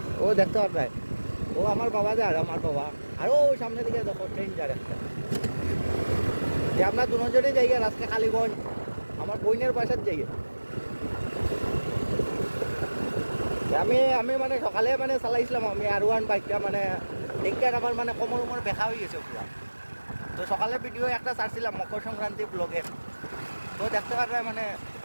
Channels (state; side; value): inverted; both; correlation -1.00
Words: ও দেখতে পারবে। ও আমার বাবা যায় আর আমার বাবা আর ওই সামনে দিকে দেখো ট্রেন যায় একটা। যে আমরা দুজনে যাই আর আজকে কালীগঞ্জ আমার বোনের বাসার যাই। আমি আমি মানে সকালে মানে চালাইছিলাম আমি R1 বাইকটা মানে দেখে আমার মানে কোমর উমর বেকা হয়ে গেছে পুরা। তো সকালে ভিডিও একটা ছাড়ছিলাম মকর সংক্রান্তি ব্লগে। তো দেখতে পারবে মানে